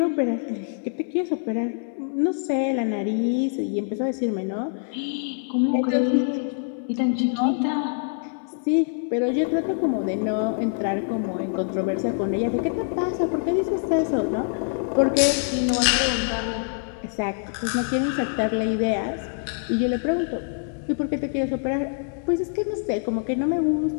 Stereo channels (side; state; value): right; silent; digital silence